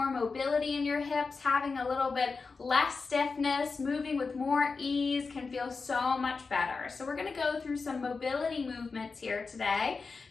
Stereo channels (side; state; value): right; quieter; 4.5 dB